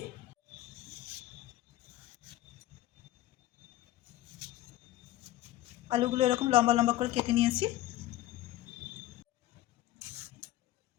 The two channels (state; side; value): quieter; right; 15.3 dB